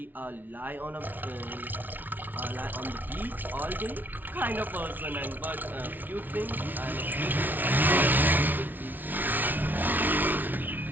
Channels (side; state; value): left; late; 0.084 ms